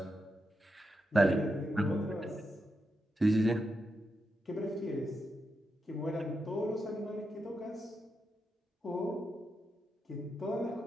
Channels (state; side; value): normal; both; correlation 0.86